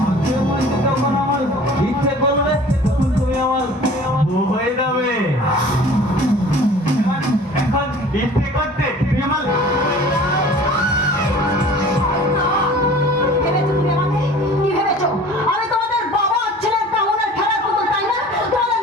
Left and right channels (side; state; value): both; normal; correlation 0.45